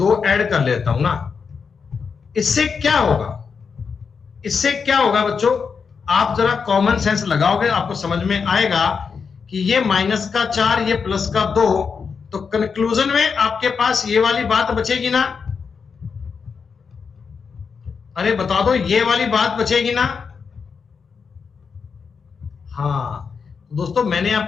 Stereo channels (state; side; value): quieter; right; 5.7 dB